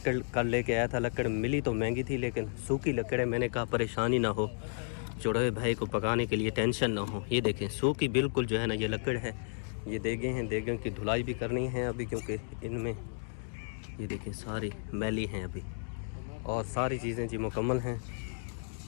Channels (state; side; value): silent; right; digital silence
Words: कल लेके आया था। लकड़ मिली तो महंगी थी लेकिन सूखी लकड़ है। मैंने कहा परेशानी ना हो, चढ़ोए भाई को पकाने के लिए टेंशन ना हो। ये देखें सूखी बिल्कुल जो है ना ये लकड़ है। ये देगें हैं, देगों की धुलाई भी करनी है अभी, क्योंकि इनमें ये देखें सारी मैली हैं अभी। और सारी चीज़ें जी मुकम्मल हैं।